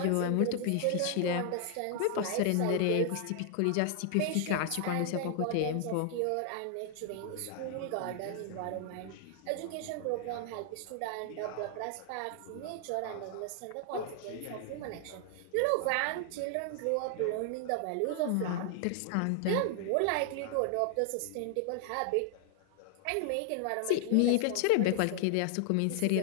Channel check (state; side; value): different; both; correlation 0.00